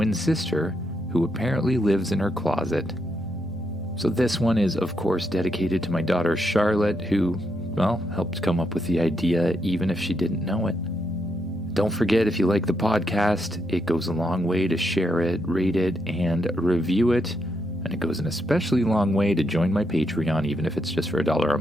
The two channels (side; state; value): both; normal; correlation 0.79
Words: sister, who apparently lives in her closet. So this one is, of course, dedicated to my daughter Charlotte, who, helped come up with the idea even if she didn't know it. Don't forget, if you like the podcast, it goes a long way to share it, rate it, and review it. And it goes an especially long way to join my Patreon, even if it's just for $1 a